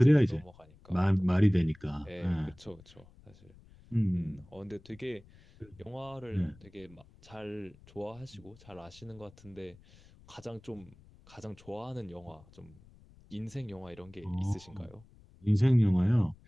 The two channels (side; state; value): left; noise; rumble, 24 dB below the sound